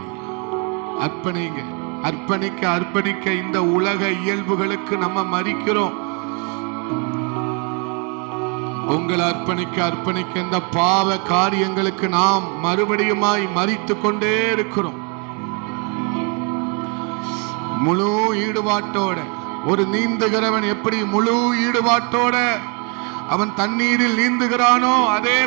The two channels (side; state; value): left; quieter; 34.9 dB